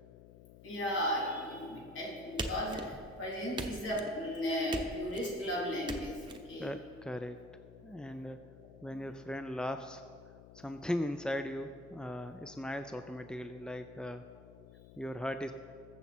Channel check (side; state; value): left; noise; hum, 17 dB below the sound